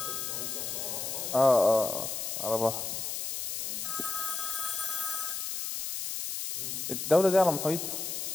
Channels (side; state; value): left; noise; hiss, 4 dB below the sound